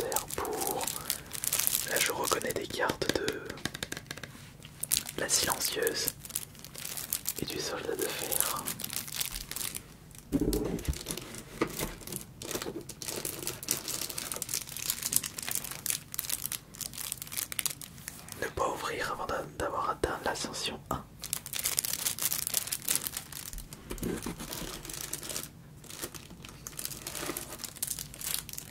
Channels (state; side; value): identical; both; correlation 1.00